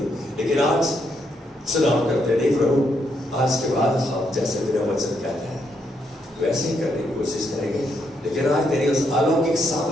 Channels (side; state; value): both; normal; correlation 0.77